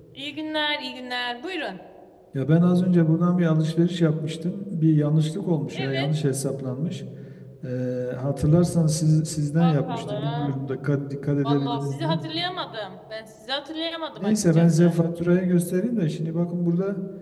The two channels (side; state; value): both; identical; correlation 1.00